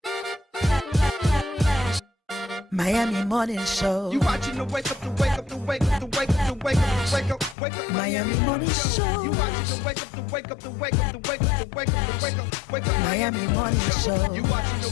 Miami Morning Show. You watching the wake up, the wake up, the wake up, the wake up, the wake up, the wake up, wake up. Miami Morning Show. You watching the wake up, the wake up, the wake up, the wake up, the wake up, the wake up, wake up. Miami Morning Show. You watching the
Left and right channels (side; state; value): right; drops out; at 7.6 s